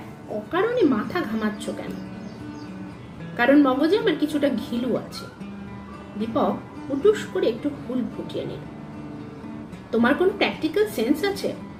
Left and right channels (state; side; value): identical; both; correlation 1.00